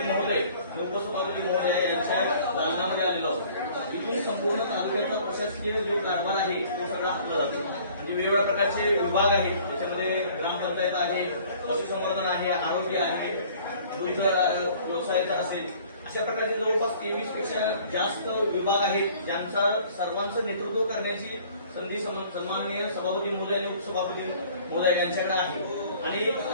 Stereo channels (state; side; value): inverted; both; correlation -0.53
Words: महोदय, उपसभापती महोदय यांच्या दालनामध्ये आलेलो आहोत. इथून संपूर्ण तालुक्याचा प्रशासकीय जो कारभार आहे तो सगळा हातला जातो. म्हणजे वेगवेगळ्या प्रकारचे विभाग आहेत, त्याच्यामध्ये ग्रामपंचायत आहे, पशुसंवर्धन आहे, आरोग्य आहे, दुग्ध व्यवसायाचा असेल, अशा प्रकारचे जवळपास 23 पेक्षा जास्त विभाग आहेत, ज्यांचा सर्वांचं नेतृत्व करण्याची संधी सन्माननीय सभापती महोदय आणि उपसभापती महोदय यांच्याकडे आहे. आणि